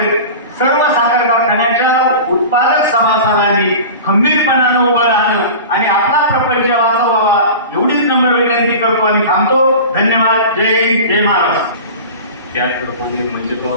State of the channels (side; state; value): both; inverted; correlation -0.34